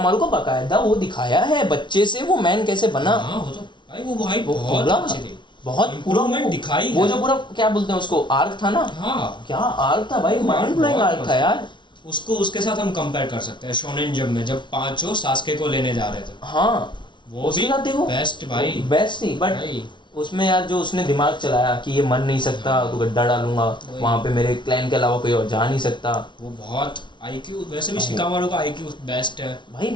को बकायदा वो दिखाया है बच्चे से वो मैन कैसे बना। हाँ वो तो भाई वो भाई वो बहुत पूरा अच्छी थी, बहुत पूरा इम्प्रूवमेंट दिखाई वो है। जो पूरा क्या बोलते हैं उसको, आर्क था ना, हाँ क्या आर्क था भाई, वो माइंड ब्लोइंग बहुत आर्क था मस्त। यार। उसको उसके साथ हम कंपेयर कर सकते हैं शोनेन जंप में जब पांचों सास्के को लेने जा रहे थे, हाँ वो उसके भी साथ देखो बेस्ट भाई। बेस्ट थी, बट भाई उसमें यार जो उसने दिमाग चलाया कि ये मर नहीं सकता तो गड्ढा डालूंगा वही। वहाँ पे, मेरे क्लैन के अलावा कोई और जा नहीं सकता वो बहुत आईक्यू, वैसे भी शिकामारू का आईक्यू बेस्ट है।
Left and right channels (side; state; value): right; late; 0.23 ms